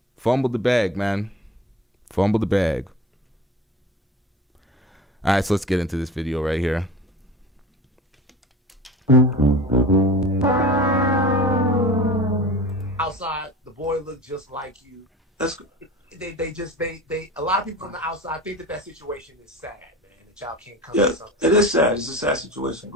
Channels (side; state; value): both; normal; correlation 0.37